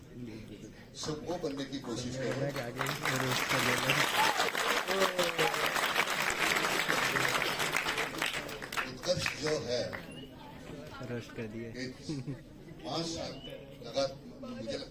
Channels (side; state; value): both; identical; correlation 1.00